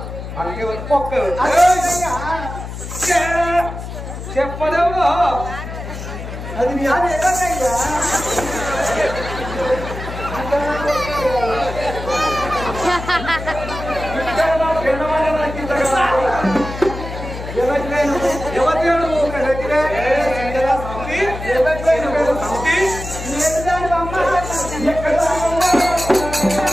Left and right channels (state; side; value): noise; left; hum, 9 dB below the sound